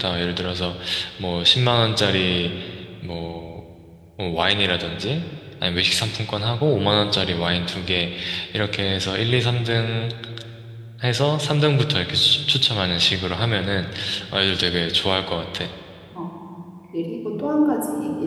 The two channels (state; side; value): identical; both; correlation 1.00